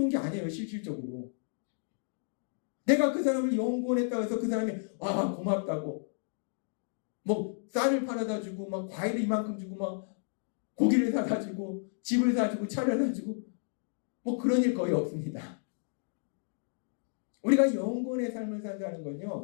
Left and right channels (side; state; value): right; silent; digital silence